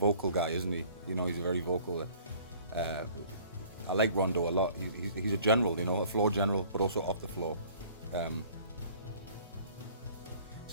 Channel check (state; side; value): inverted; both; correlation -0.52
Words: guy, isn't he? He's a very vocal. I like Rondo a lot. He's a general, a floor general, but also off the floor. It's